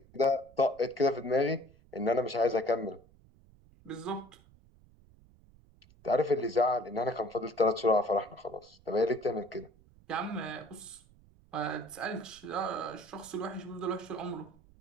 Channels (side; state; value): right; noise; rumble, 27 dB below the sound